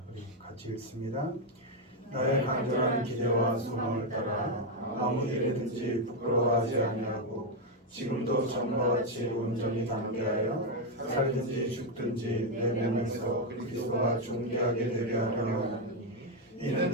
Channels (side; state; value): both; normal; correlation 0.04